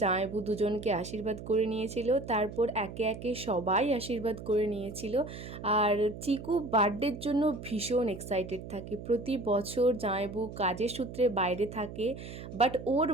জামাইবু দুজনকে আশীর্বাদ করে নিয়েছিল, তারপর একে একে সবাই আশীর্বাদ করে নিয়েছিল। আর চিকু বার্থডের জন্য ভীষণ এক্সাইটেড থাকে। প্রতি বছর জামাইবু কাজের সূত্রে বাইরে থাকে, বাট ওর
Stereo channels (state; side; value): noise; right; hum, 11 dB below the sound